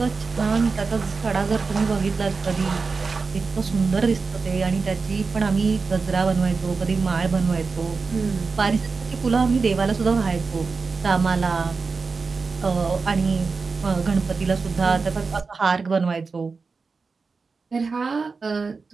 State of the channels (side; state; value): left; quieter; 4.5 dB